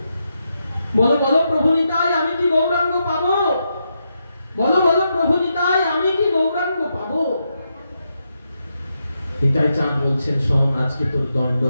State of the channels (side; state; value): both; inverted; correlation -0.83